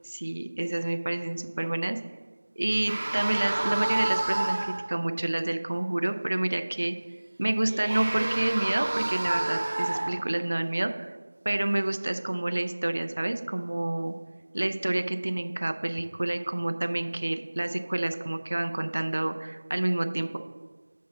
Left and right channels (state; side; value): inverted; both; correlation -1.00